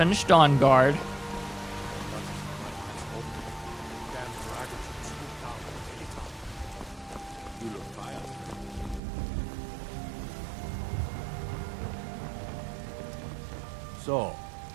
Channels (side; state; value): left; drops out; at 9.0 s